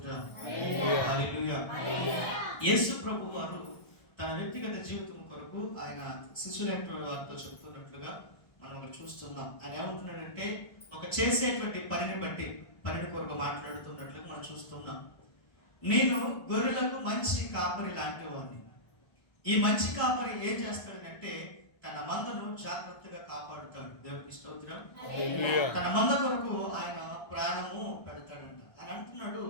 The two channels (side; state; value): right; late; 1.3 ms